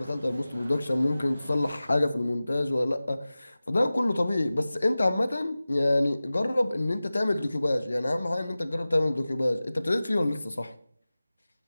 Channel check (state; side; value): inverted; both; correlation -0.97